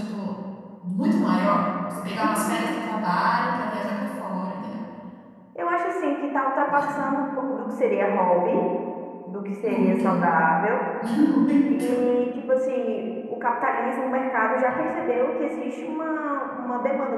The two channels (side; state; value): both; identical; correlation 1.00